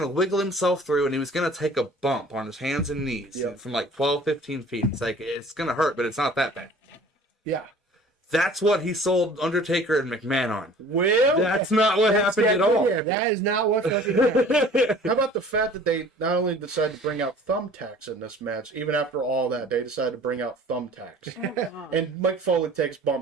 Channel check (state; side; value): normal; both; correlation 0.48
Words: to wiggle himself through, and he was going to take a bump on his hands and knees from like 12, 15 feet. It's like, it's going to hurt, but it's not that bad. Yeah. That's what he sold Undertaker and McMahon on. Well, that's not what happened at all. That is not what fucking happened. How about the fact that they not only decided to bring out thumbtacks in this match, even after all that, they decided to bring out thumbtacks. And Mike Foley takes